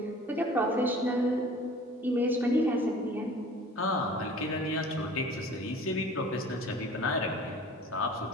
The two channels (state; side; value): normal; both; correlation 0.46